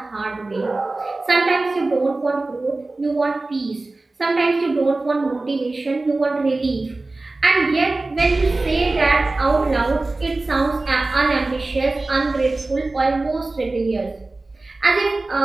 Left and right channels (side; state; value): left; quieter; 3.2 dB